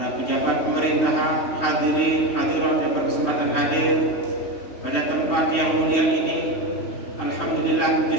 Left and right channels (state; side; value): late; right; 3.0 ms